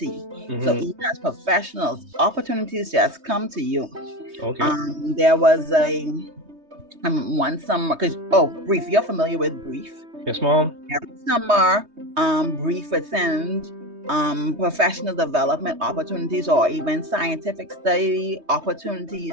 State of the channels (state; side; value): late; left; 3.2 ms